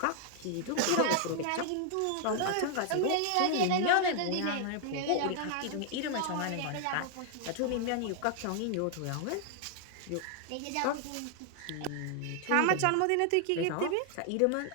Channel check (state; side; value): different; both; correlation 0.00